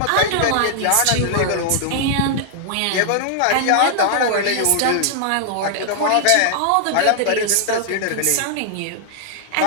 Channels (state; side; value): different; both; correlation -0.01